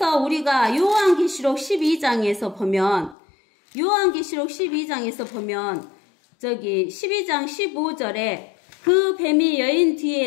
우리가 요한계시록 12장에서 보면 저기 12장 15절에 그 뱀이 여인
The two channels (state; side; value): drops out; right; at 3.2 s